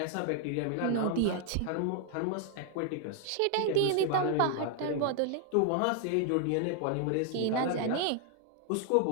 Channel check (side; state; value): both; different; correlation 0.00